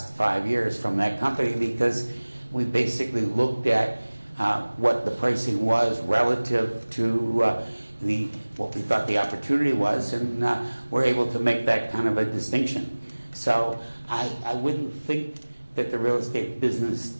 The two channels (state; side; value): inverted; both; correlation -1.00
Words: 5 years from that company, because we basically looked at what the pricing was relative to what we thought the opportunity was, and we're able to make that kind of a distinction. So I wouldn't think that the real estate business